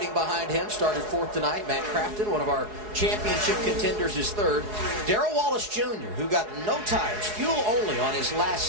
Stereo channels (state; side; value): late; left; 4.7 ms